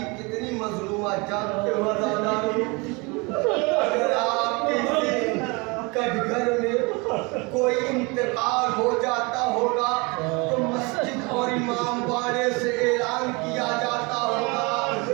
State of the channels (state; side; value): quieter; left; 27.9 dB